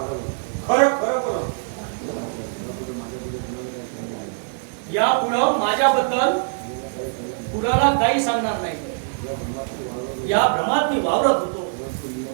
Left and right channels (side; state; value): left; silent; digital silence